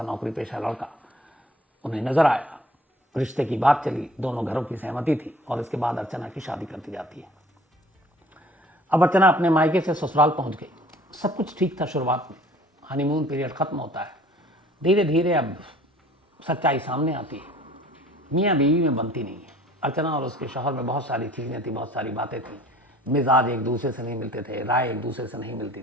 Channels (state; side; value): normal; both; correlation 0.51